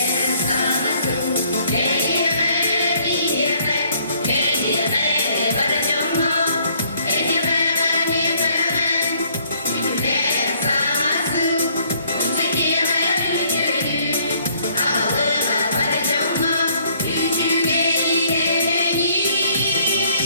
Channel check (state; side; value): inverted; both; correlation -0.62